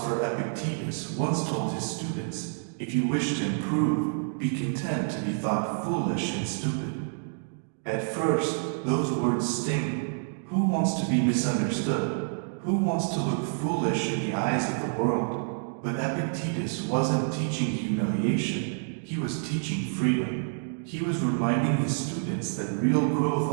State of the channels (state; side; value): silent; left; digital silence